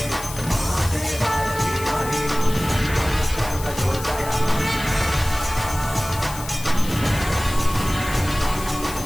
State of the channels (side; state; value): left; noise; hiss, 12 dB below the sound